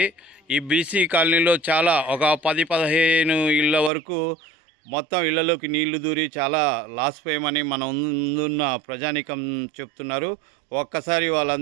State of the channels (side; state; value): left; drops out; at 3.9 s